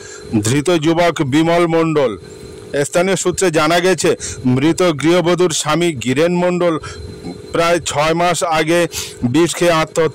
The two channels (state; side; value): identical; both; correlation 1.00